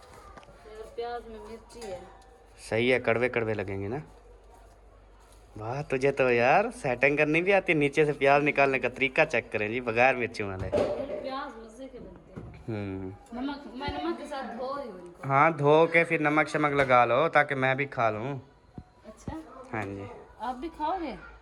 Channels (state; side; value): identical; both; correlation 1.00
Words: प्याज में मिर्ची है। सही है, कड़वे कड़वे लगेंगे ना। वाह तुझे तो यार सेटिंग करनी भी आती है। नीचे से प्याज निकालने का तरीका चेक करें जी, बगैर मिर्ची वाले। प्याज मजे के बनते हैं। नमक, मैं नमक के साथ धो रही हूँ इनको। हाँ धो के फिर नमक शमक लगा लो ताकि मैं भी खा लूँ। अच्छा हाँ जी आप भी खाओगे?